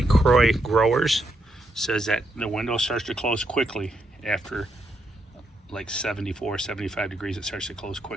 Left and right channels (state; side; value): normal; both; correlation 0.79